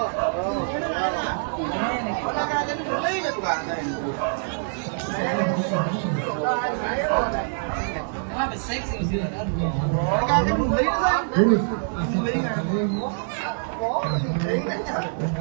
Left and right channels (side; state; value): left; silent; 62 dB below the other